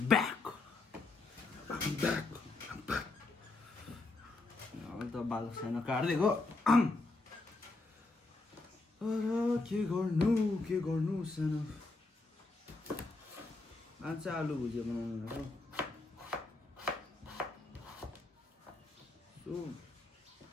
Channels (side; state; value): right; quieter; 3.4 dB